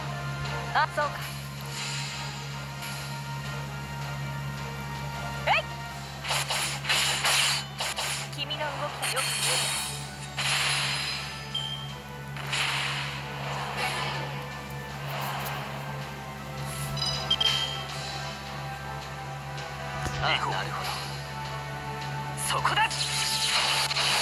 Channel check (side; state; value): both; identical; correlation 1.00